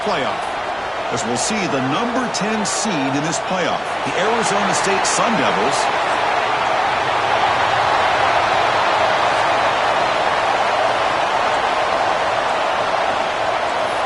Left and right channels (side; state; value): both; identical; correlation 1.00